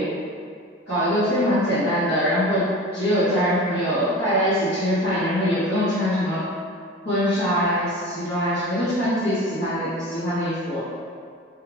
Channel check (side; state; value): both; normal; correlation 0.35